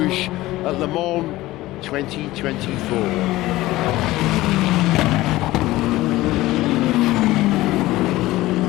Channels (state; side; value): quieter; right; 17.5 dB